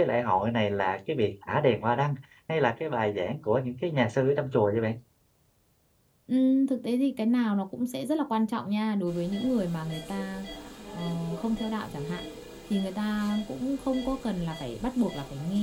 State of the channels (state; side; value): identical; both; correlation 1.00